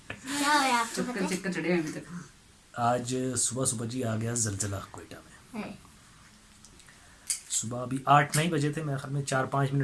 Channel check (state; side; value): identical; both; correlation 1.00